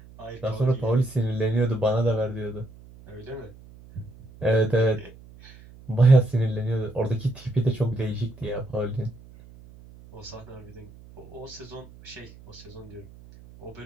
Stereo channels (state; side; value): noise; right; hum, 21 dB below the sound